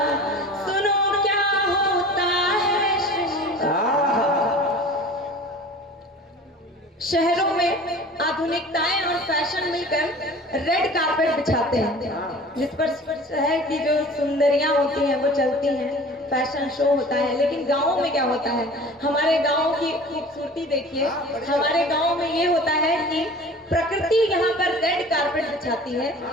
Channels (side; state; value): both; normal; correlation 0.42